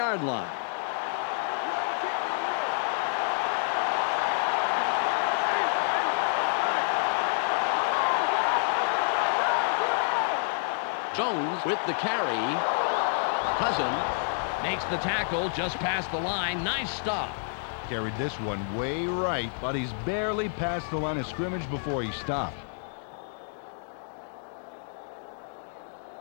line. Jones with the carry. Cousin makes the tackle just past the line. Nice stop. Carried this one way right, but he's barely past the line of scrimmage before he stopped.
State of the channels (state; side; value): silent; right; digital silence